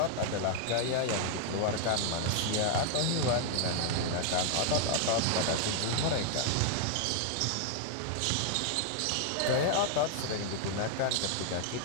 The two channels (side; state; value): both; different; correlation 0.00